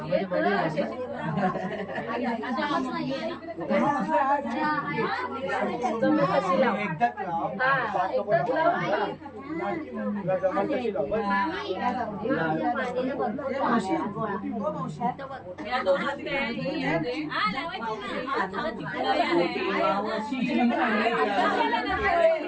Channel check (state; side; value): identical; both; correlation 1.00